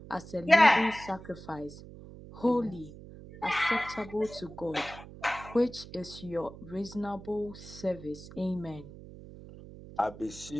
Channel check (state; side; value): noise; right; hum, 16 dB below the sound